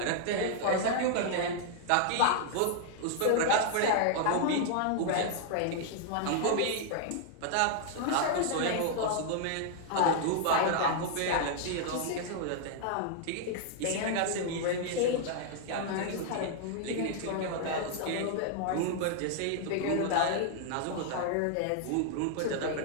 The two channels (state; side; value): different; both; correlation 0.00